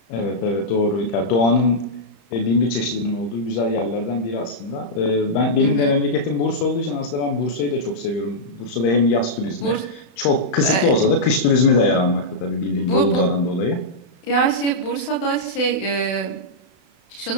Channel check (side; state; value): right; late; 32 ms